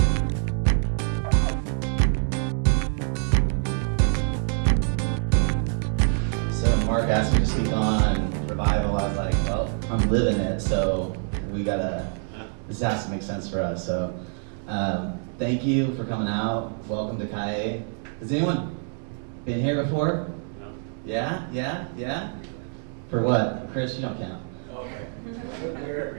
asked me to speak on revival. I was like, well, I'm living it, so this has to make sense for us. So thank you for coming out. Welcome to Calle. Has anyone been here before? No. Yeah? For what? Chris, you don't count. Okay.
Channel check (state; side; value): silent; left; 60 dB below the other